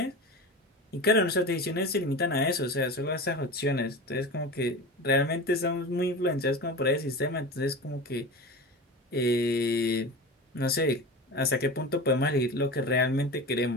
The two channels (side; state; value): both; normal; correlation 0.30